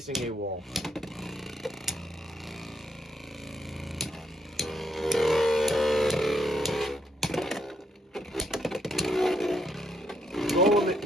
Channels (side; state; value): both; normal; correlation 0.76